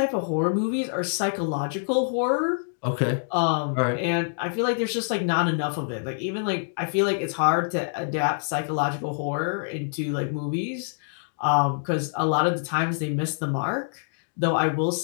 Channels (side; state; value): right; silent; digital silence